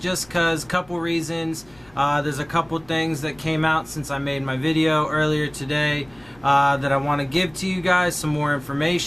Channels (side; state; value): left; noise; hum, 28 dB below the sound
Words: because, couple reasons. There's a couple things that came out since I made my video earlier today that I want to give to you guys some more